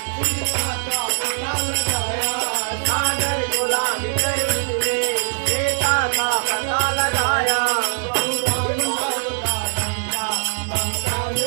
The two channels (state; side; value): silent; left; digital silence